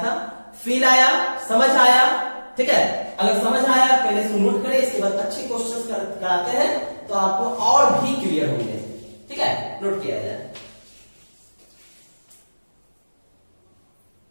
था। फील आया? समझ आया? ठीक है। अगर समझ आया पहले से नोट करें, इसके बाद अच्छे क्वेश्चंस कराते हैं तो आपको और भी क्लियर होंगे, ठीक है। नोट किया जाए।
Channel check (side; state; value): both; inverted; correlation -1.00